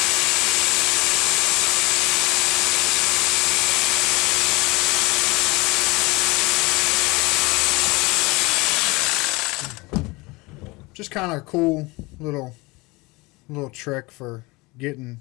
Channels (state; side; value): quieter; right; 24.1 dB